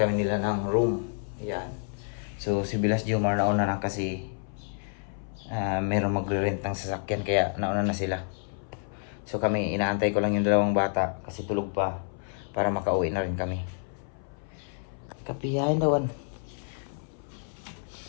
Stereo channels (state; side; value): silent; right; 59 dB below the other